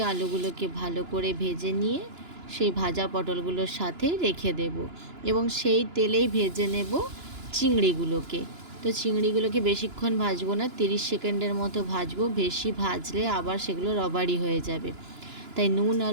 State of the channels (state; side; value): late; left; 2.9 ms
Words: আলুগুলোকে ভালো করে ভেজে নিয়ে সেই ভাজা পটলগুলোর সাথে রেখে দেব এবং সেই তেলেই ভেজে নেব চিংড়িগুলোকে। তো চিংড়িগুলোকে বেশিক্ষণ ভাজবো না, 30 সেকেন্ডের মতো ভাজবো। বেশি ভাজলে আবার সেগুলো রবারি হয়ে যাবে, তাই নুন